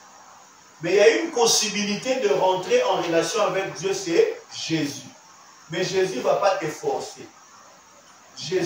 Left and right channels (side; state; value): both; identical; correlation 1.00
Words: Mais il y a une possibilité de rentrer en relation avec Dieu, c'est Jésus. Mais Jésus ne va pas te forcer.